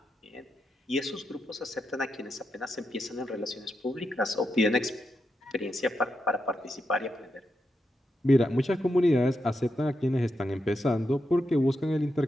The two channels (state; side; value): normal; both; correlation 0.85